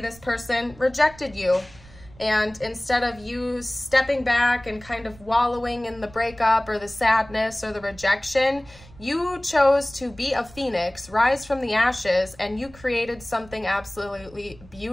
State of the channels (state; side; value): noise; right; rumble, 22 dB below the sound